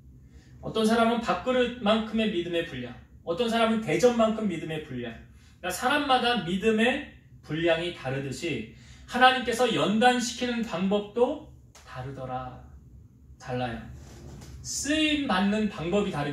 어떤 사람은 밥그릇만큼의 믿음의 분량. 어떤 사람은 대접만큼 믿음의 분량. 그러니까 사람마다 믿음의 분량이 다르듯이 하나님께서 연단시키는 방법도 달라요. 쓰임 받는 방법이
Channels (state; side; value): identical; both; correlation 1.00